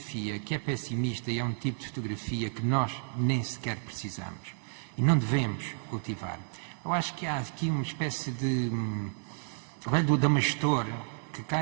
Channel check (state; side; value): silent; left; 57 dB below the other